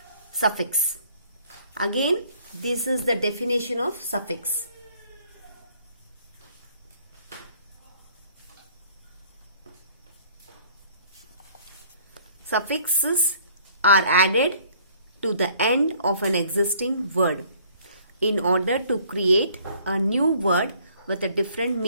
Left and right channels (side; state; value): both; inverted; correlation -0.58